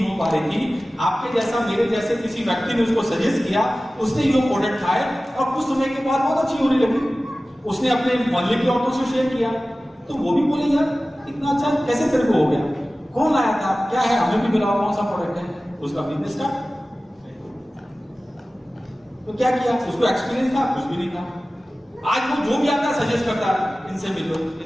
हो पा रही थी। आपके जैसा मेरे जैसे किसी व्यक्ति ने उसको सजेस्ट किया, उसने ये प्रोडक्ट खाए और कुछ समय के बाद बहुत अच्छी होने लगी। उसने अपने मोहल्ले की औरतों से शेयर किया, तो वो भी बोले यार इतना अच्छा कैसे तेरे को हो गया, कौन लाया था, क्या है, हमें भी मिला, कौन सा प्रोडक्ट है। उसका बिजनेस स्टार्ट। तो क्या किया, उसको एक्सपीरियंस था, कुछ भी नहीं था। आज वो जो भी आता है सजेस्ट करता है, इनसे मिलो,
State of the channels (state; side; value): normal; both; correlation 0.96